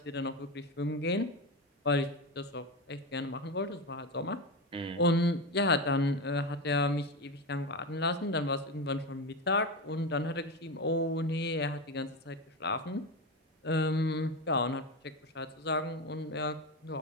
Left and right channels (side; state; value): both; normal; correlation 0.18